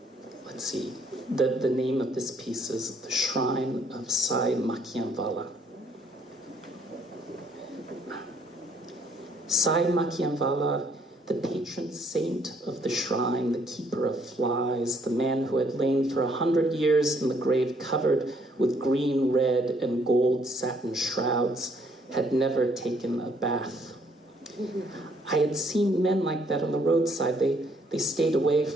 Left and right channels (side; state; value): both; normal; correlation 0.66